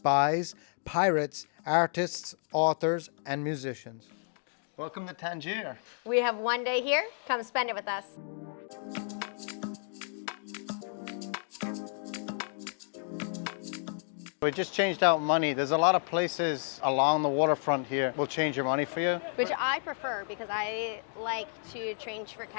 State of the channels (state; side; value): silent; right; 57 dB below the other